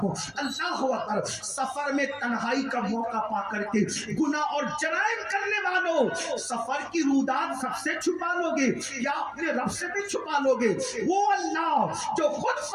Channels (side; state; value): both; identical; correlation 1.00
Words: اللہ اکبر، سفر میں تنہائی کا موقع پا کر کے گناہ اور جرائم کرنے والوں، سفر کی رودات سب سے چھپا لو گے یا اپنے رب سے بھی چھپا لو گے؟ وہ اللہ جو خود